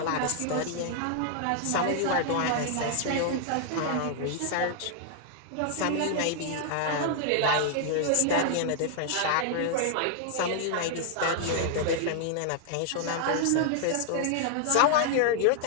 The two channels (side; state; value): both; different; correlation -0.01